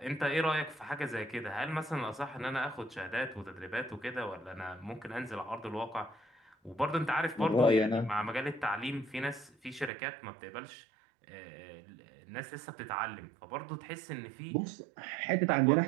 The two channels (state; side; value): drops out; left; at 9.9 s